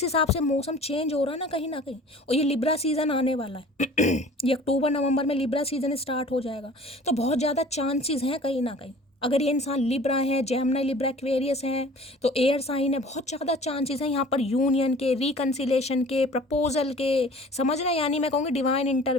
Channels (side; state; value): both; normal; correlation 0.46